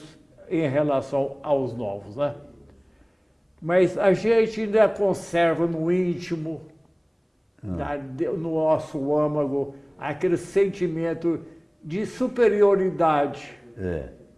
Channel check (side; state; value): both; identical; correlation 1.00